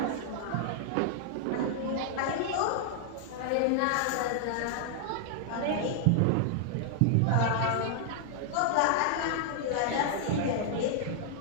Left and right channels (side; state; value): both; different; correlation 0.00